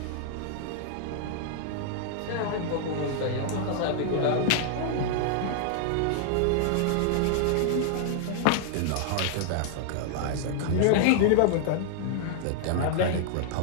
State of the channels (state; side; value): different; both; correlation -0.01